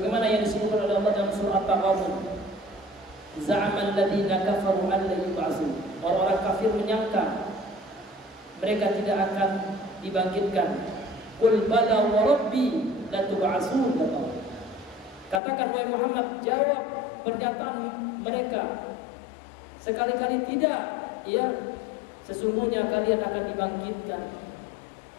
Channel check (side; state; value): right; drops out; at 15.4 s